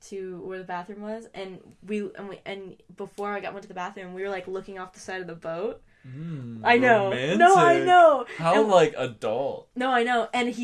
to where the bathroom was, and before I went to the bathroom, we were like looking off the side of the boat. I know. Romantic. No, I know. How like adult. No, I know. And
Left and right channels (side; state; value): both; identical; correlation 1.00